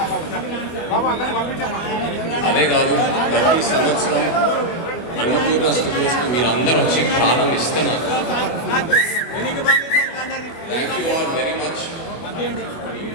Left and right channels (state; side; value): late; right; 24 ms